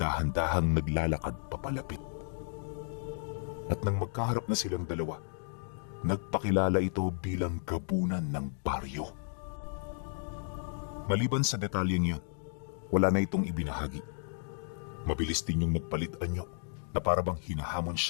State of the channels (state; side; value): silent; right; digital silence